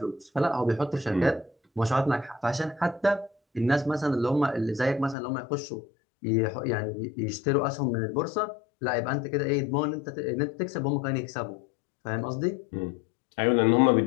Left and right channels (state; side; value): drops out; right; at 5.2 s